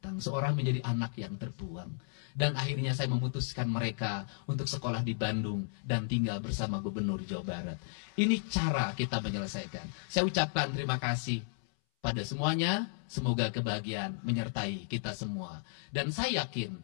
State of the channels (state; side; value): silent; right; 55 dB below the other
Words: Seorang menjadi anak yang terbuang. Dan akhirnya saya memutuskan mereka untuk sekolah di Bandung dan tinggal bersama Gubernur Jawa Barat. Ini cara kita menyelesaikan. Saya ucapkan terima kasih pada semuanya, semoga kebahagiaan menyertai kita semua. Dan saya yakin